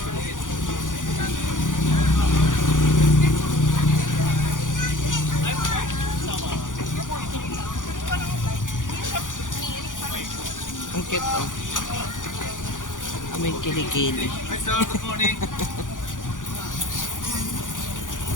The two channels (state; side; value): late; right; 0.88 ms